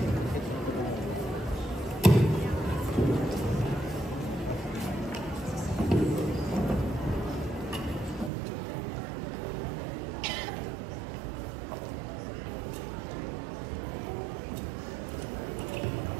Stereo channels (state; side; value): drops out; left; at 8.3 s